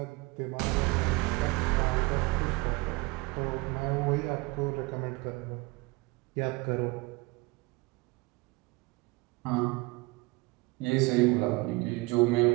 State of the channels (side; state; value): left; quieter; 24.0 dB